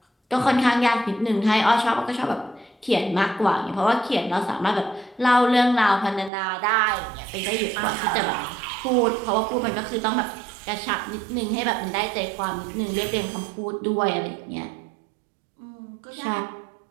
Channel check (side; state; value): left; drops out; at 6.3 s